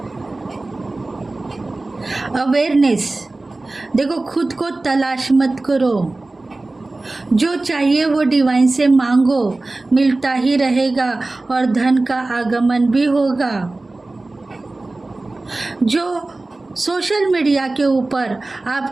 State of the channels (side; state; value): left; quieter; 3.1 dB